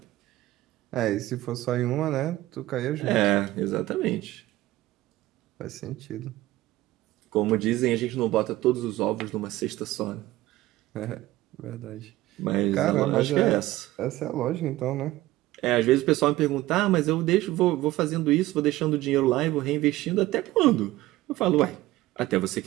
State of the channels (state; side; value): quieter; left; 16.9 dB